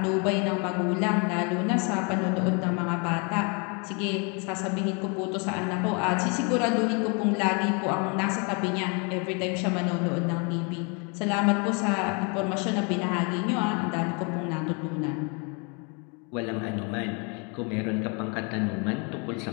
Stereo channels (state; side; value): quieter; right; 34.1 dB